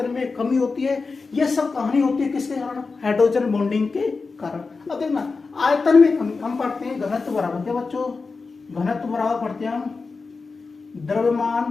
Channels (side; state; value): right; quieter; 4.3 dB